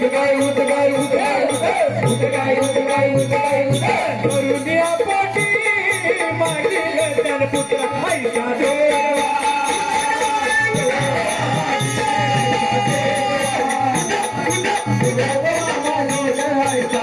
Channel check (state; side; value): identical; both; correlation 1.00